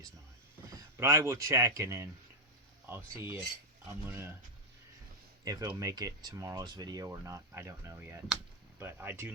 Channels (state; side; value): normal; both; correlation -0.01